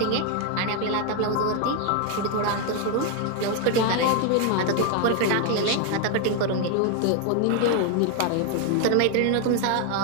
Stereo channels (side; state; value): both; different; correlation 0.01